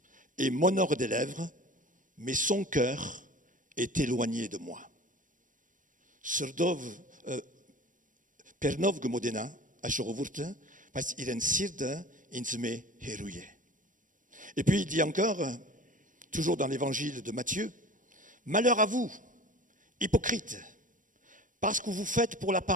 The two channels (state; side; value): late; left; 0.38 ms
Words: et m'honore des lèvres, mais son cœur est éloigné de moi. » Pernov Gmodena, Ashorowurte, parce qu'il sirde insme hérouillé. Et puis il dit encore, toujours dans l'évangile de Matthieu, « Malheur à vous, hypocrites, parce que vous faites pour